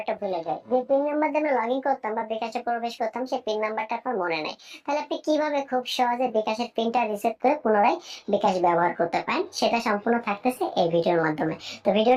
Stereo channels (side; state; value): both; identical; correlation 1.00